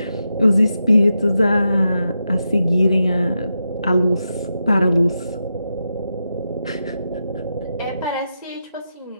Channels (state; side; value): inverted; both; correlation -0.87